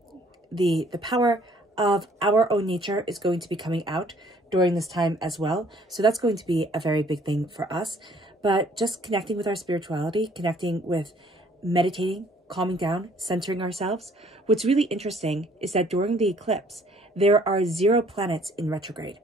power of our own nature is going to be coming out during this time as well. So that's going to be a very big thing for us. But just connecting with our spirituality, connecting with meditating, calming down, centering ourselves. What's really interesting is that during the eclipse, there are 0 planets in retrograde.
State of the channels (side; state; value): both; normal; correlation 0.59